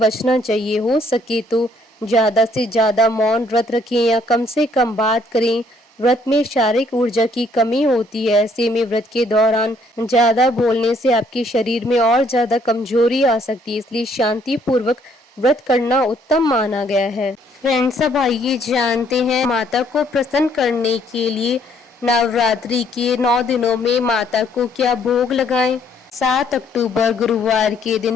चाहिए। हो सके तो ज्यादा से ज्यादा मौन व्रत रखें या कम से कम बात करें। व्रत में शारीरिक ऊर्जा की कमी होती है। ऐसे में व्रत के दौरान ज्यादा बोलने से आपके शरीर में और ज्यादा कमजोरी आ सकती है, इसलिए शांति पूर्वक व्रत करना उत्तम माना गया है। फ्रेंड्स, अब आइए जानते हैं माता को प्रसन्न करने के लिए नवरात्रि के 9 दिनों में माता को क्या भोग लगाएं। 7 अक्टूबर गुरुवार के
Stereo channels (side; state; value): both; normal; correlation 0.66